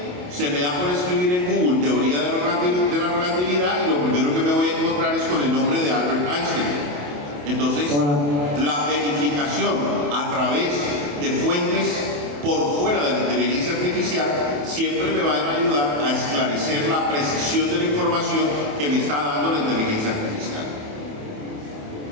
se me da por escribir en Google teoría de la relatividad y lo primero que me voy a encontrar es con el nombre de Albert Einstein. Entonces, la verificación a través de fuentes por fuera de la inteligencia artificial siempre me van a ayudar a esclarecer la precisión de la información que me está dando la inteligencia artificial.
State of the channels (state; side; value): late; left; 28 ms